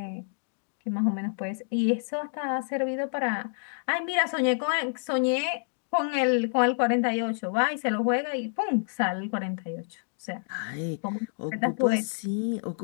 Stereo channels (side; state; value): right; silent; digital silence